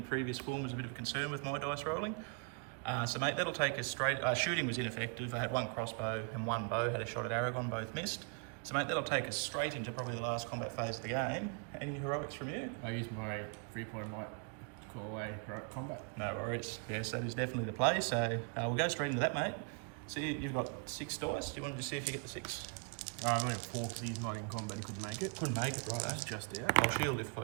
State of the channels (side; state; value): left; quieter; 37.6 dB